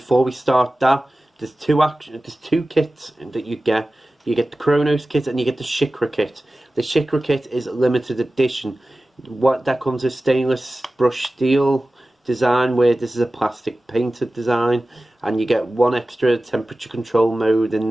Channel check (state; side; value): normal; both; correlation 0.96